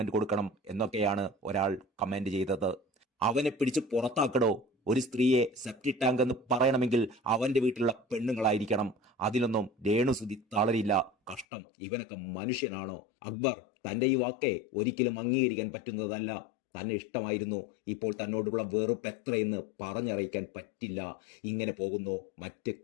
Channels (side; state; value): right; drops out; at 11.5 s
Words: കൊടുക്കണം എന്നൊക്കെയാണ് ഒരാൾ കമന്റ് ചെയ്തത്. അവനെ പിടിച്ച് പുറത്താക്കടോ. ഒരു സ്ത്രീയെ സെപ്റ്റിക് ടാങ്ക് എന്ന് പറയണമെങ്കിൽ അവന്റെ വീട്ടിലുള്ള പെണ്ണുങ്ങളായിരിക്കണം. അതിലൊന്നും രേണുസുധി തളരില്ല. കഷ്ടം, ഇവനൊക്കെ മനുഷ്യനാണോ? അക്ബർ, തന്റെ ഈ വാക്കെ ഒരിക്കലും അംഗീകരിക്കാൻ പറ്റുന്നതല്ല. തന്നെ ഇഷ്ടമായിരുന്നു, ഇപ്പോൾ തന്നോടുള്ള വെറുപ്പ് എത്രയെന്ന് പറഞ്ഞറിയിക്കാൻ പറ്റില്ല. ഇങ്ങനെ പോകുന്നു മറ്റ്